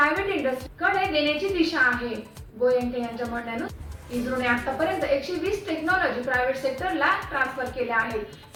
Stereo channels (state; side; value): identical; both; correlation 1.00